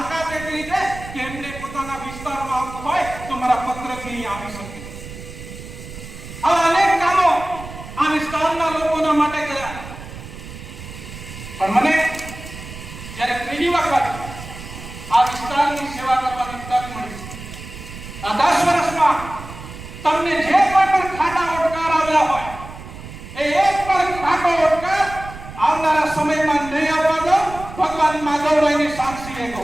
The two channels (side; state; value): right; noise; rumble, 13 dB below the sound